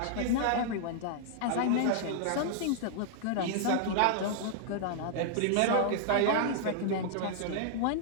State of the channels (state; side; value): different; both; correlation -0.01